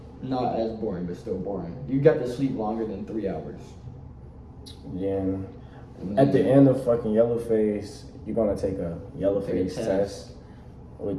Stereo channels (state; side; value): identical; both; correlation 1.00